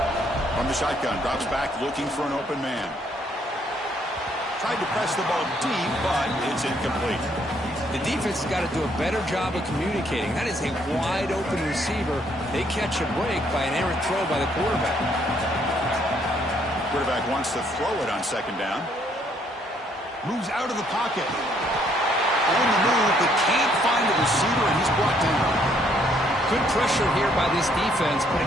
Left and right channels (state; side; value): normal; both; correlation 0.68